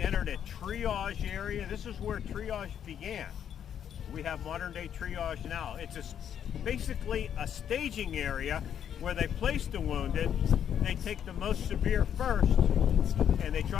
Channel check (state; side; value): quieter; right; 9.1 dB